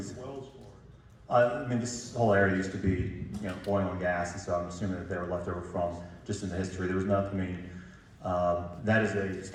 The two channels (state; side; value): identical; both; correlation 1.00